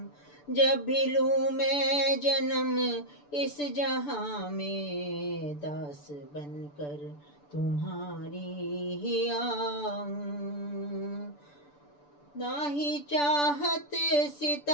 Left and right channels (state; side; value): late; right; 6.9 ms